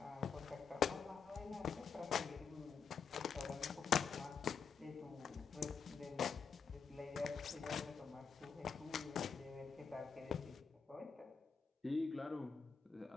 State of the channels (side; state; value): right; quieter; 5.9 dB